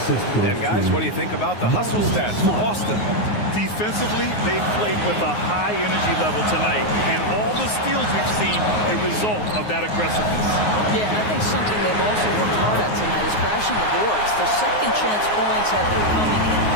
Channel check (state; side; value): late; right; 9.5 ms